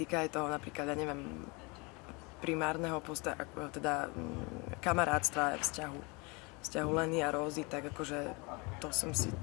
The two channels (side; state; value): right; quieter; 28.5 dB